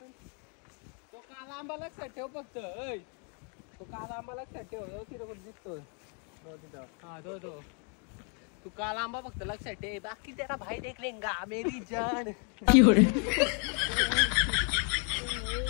तो काला आंबा लक्षात ठेव फक्त. तो काला आंबा लक्षात ठेव. तिथे कुठे दिसतो हा तो तू काला आंबा फक्त लक्षात ठेव. बाकी तेरा भाई देख लेंगा मेरी जान.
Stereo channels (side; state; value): right; quieter; 39.1 dB